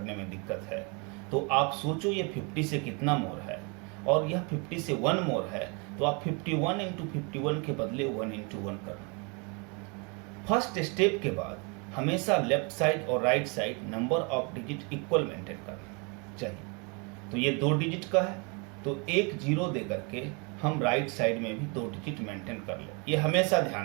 में दिक्कत है, तो आप सोचो ये 50 से कितना मोर है, और यह 50 से 1 मोर है, तो आप 51 into 51 के बदले 1 into 1 कर लो। फर्स्ट स्टेप के बाद हमेशा लेफ्ट साइड और right side number of digit equal maintain करना चाहिए। तो ये 2 डिजिट का है, तो एक 0 दे करके हम राइट साइड में भी 2 डिजिट मेंटेन कर ले। ये हमेशा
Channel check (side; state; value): left; quieter; 32.7 dB